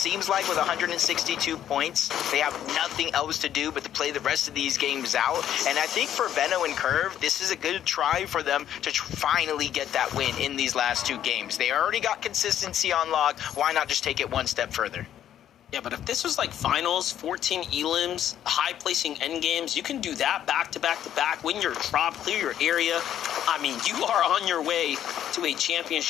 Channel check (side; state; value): right; quieter; 10.7 dB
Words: like with 162 points, they have nothing else to do but to play the rest of these games out. And I think for Veno and Curve, this is a good try for them to finally get that win in these last 2 games. They already got consistency on lock. Why not just take it one step further? Yeah, but if this was like finals, 14 elims, high-placing endgames, you can do that back-to-back-to-back, win your drop, clear your area. I mean, you are on your way to a